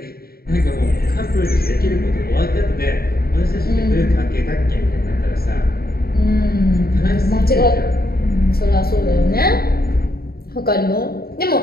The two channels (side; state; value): right; late; 0.44 ms